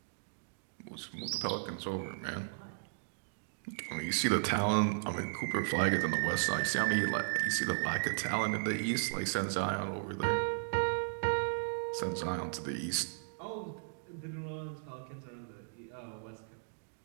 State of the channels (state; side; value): silent; left; digital silence